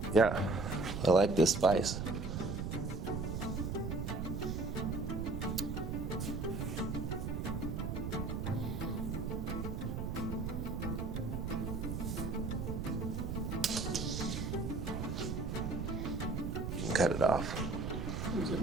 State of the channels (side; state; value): right; noise; rumble, 2 dB below the sound